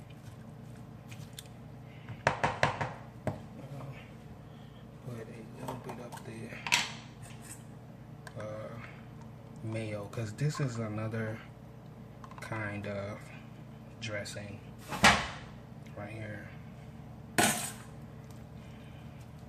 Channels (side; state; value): both; identical; correlation 1.00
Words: Put a little bit up the mayo, because this is another kind of dressing right here.